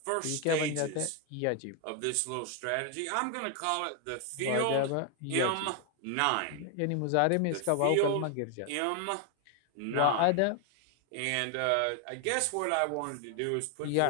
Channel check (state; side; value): different; both; correlation 0.01